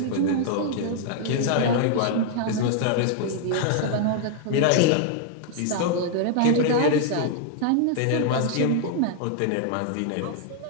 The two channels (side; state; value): both; different; correlation 0.00